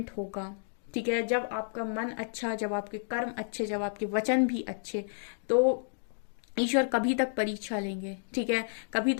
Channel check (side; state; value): right; silent; digital silence